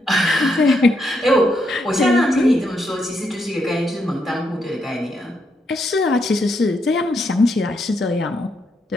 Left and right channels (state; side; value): normal; both; correlation 0.78